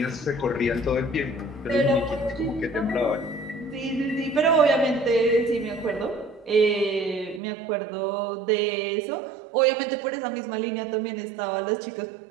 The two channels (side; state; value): left; drops out; at 7.4 s